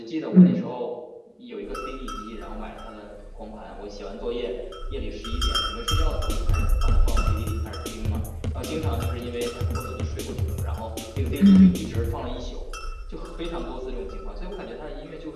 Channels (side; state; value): both; identical; correlation 1.00